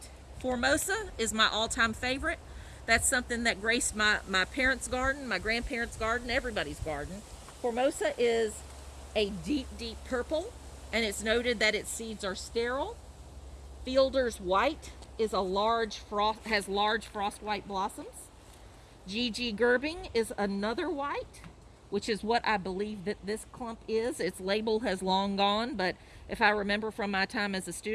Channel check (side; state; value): both; identical; correlation 1.00